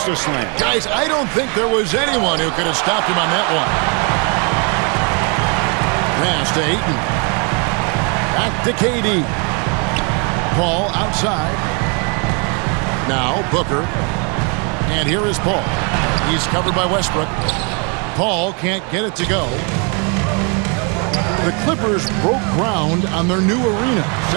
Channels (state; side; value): quieter; left; 35.1 dB